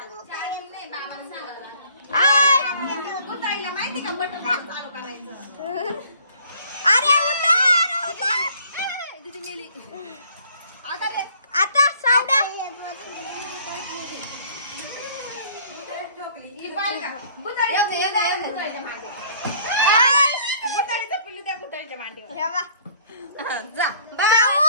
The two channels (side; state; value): both; inverted; correlation -0.57